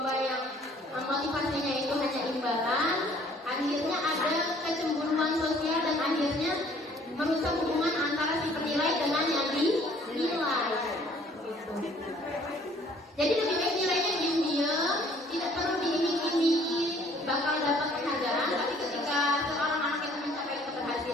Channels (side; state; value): both; normal; correlation 0.58